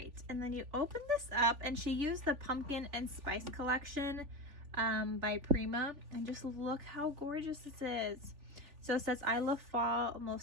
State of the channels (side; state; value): left; late; 3.5 ms